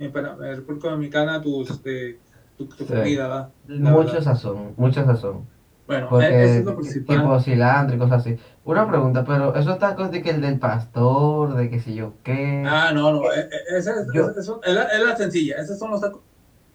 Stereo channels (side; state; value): both; identical; correlation 1.00